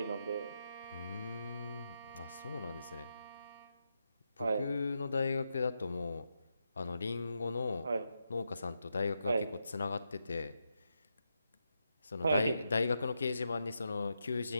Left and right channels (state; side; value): inverted; both; correlation -0.85